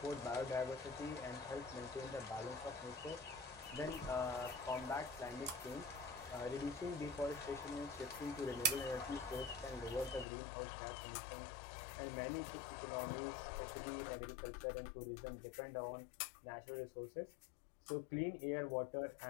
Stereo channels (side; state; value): right; drops out; at 10.2 s